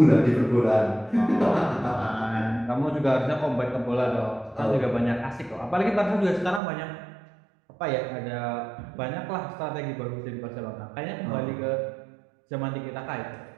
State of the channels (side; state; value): left; drops out; at 6.6 s